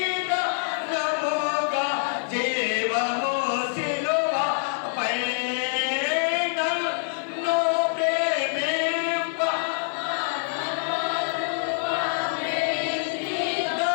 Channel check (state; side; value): silent; right; 61 dB below the other